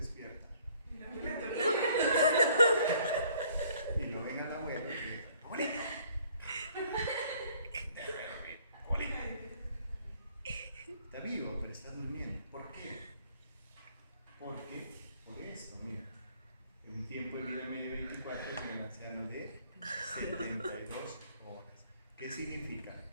Y lo ven al abuelo y dice, ¡abuelito! Está vivo, pero está durmiendo. ¿Por qué? Porque, por esto, mira, en tiempo de vida medio 24 es un anciano de 72 horas. ¿Qué significa?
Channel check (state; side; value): inverted; both; correlation -0.61